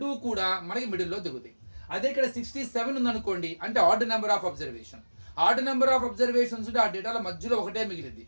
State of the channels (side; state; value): both; inverted; correlation -1.00